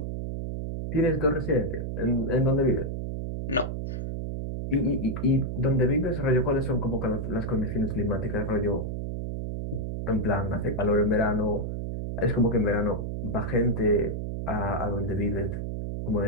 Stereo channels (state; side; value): noise; right; hum, 4 dB below the sound